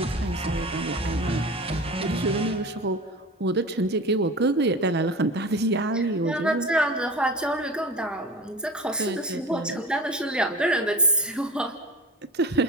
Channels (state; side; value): normal; both; correlation 0.34